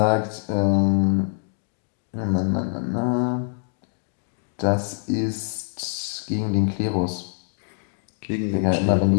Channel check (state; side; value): silent; right; digital silence